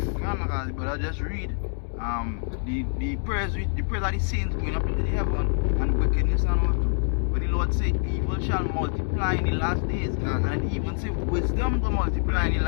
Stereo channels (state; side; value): silent; right; digital silence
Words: But I just read the prayers that the saints going up into the heaven and wickedness and all too. But the Lord said evil shall multiply in the last days, and it even say wisdom will multiply in the